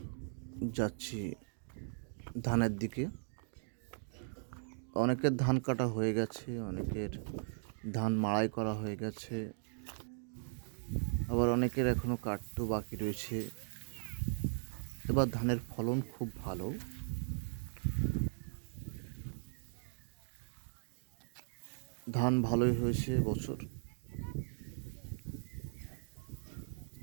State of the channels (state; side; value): silent; left; digital silence